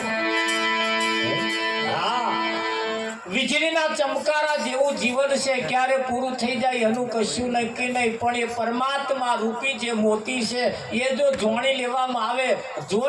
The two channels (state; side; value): identical; both; correlation 1.00